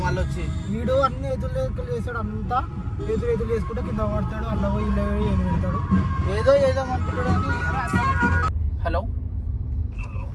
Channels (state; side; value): identical; both; correlation 1.00